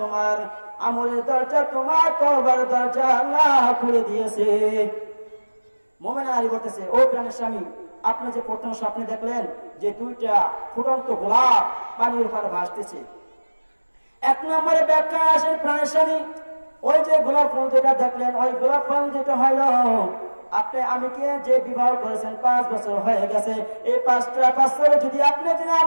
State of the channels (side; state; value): both; inverted; correlation -1.00